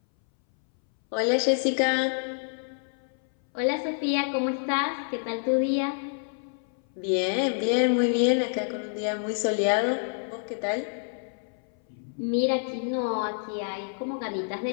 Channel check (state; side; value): silent; right; 60 dB below the other